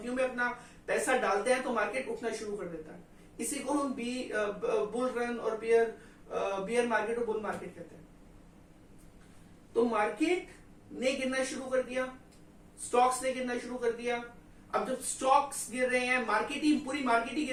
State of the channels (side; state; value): both; identical; correlation 1.00